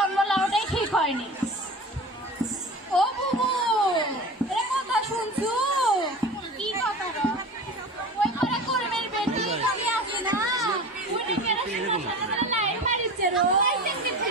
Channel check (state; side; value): normal; both; correlation 0.34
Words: লাউটাই ঠিক হয়নি ও বুবু এ কথা শুনছু কি কথা ওই ঘরে কর্মের বেটি কবি আছে না উনি কেন সারা লাইন মারিছে রো